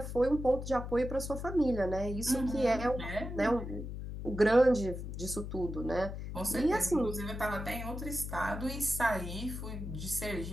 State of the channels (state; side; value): noise; left; hum, 7 dB below the sound